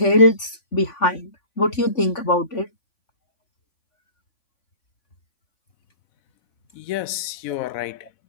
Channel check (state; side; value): late; right; 3.5 ms